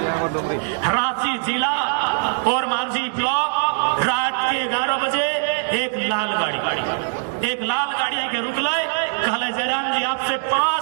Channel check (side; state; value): left; silent; digital silence